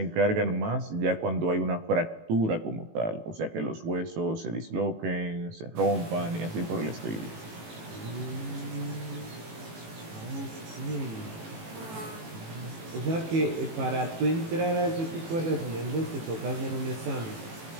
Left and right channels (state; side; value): late; left; 18 ms